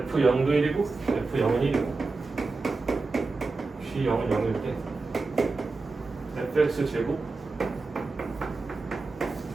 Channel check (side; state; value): left; quieter; 3.8 dB